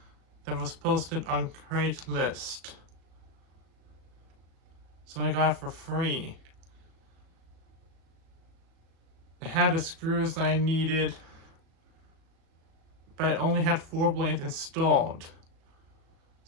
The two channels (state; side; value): late; left; 37 ms